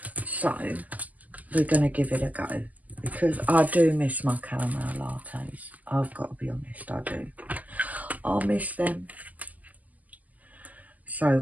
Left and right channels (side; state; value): left; late; 0.079 ms